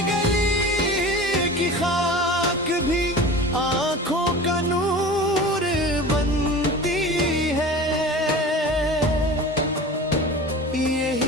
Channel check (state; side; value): normal; both; correlation 0.36